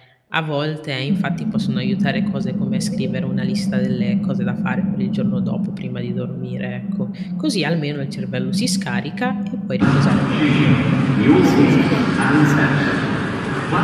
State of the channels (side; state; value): both; identical; correlation 1.00